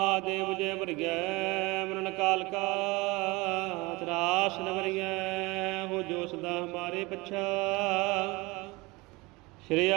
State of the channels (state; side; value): quieter; left; 23.6 dB